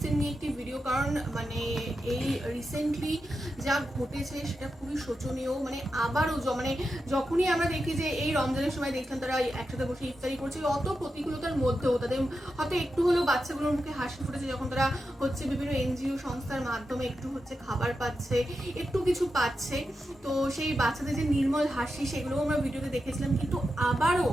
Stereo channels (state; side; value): normal; both; correlation 0.89